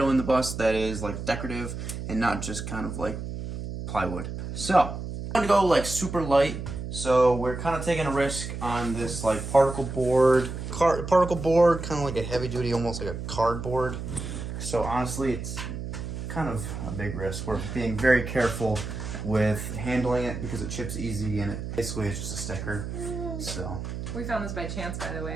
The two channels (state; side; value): noise; right; hum, 6 dB below the sound